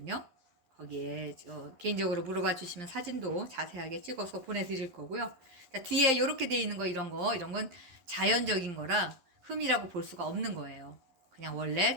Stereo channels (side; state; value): left; late; 11 ms